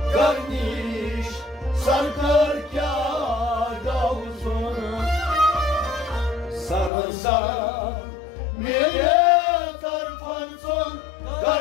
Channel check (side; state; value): right; drops out; at 6.9 s